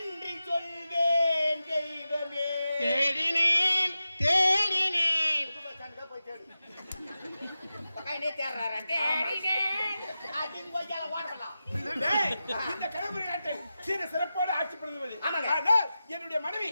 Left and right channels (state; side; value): inverted; both; correlation -0.92